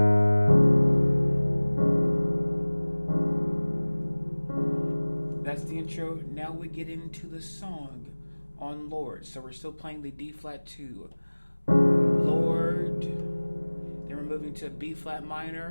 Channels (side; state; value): both; inverted; correlation -1.00